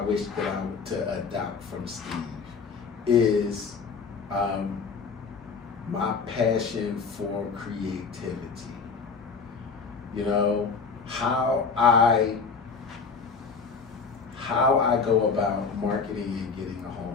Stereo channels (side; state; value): right; quieter; 5.2 dB